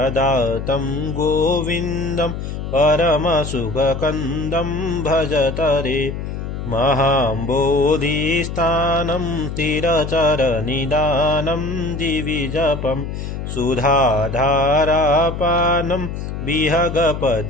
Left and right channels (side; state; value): left; noise; hum, 6 dB below the sound